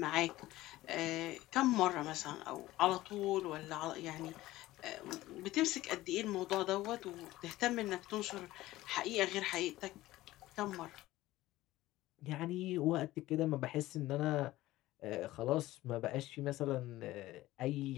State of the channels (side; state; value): right; quieter; 16.7 dB